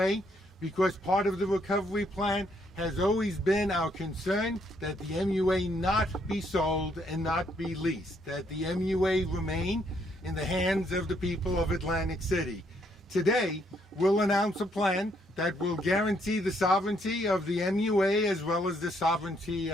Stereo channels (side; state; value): both; normal; correlation 0.71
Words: because part of the recovery plan has always been our concern that the MUA not be sold and not be leased, that the MUA remain in the hands of the people of Atlantic City. Today, we'll announce a plan that will guarantee the sovereignty of the MUA as well as the sovereignty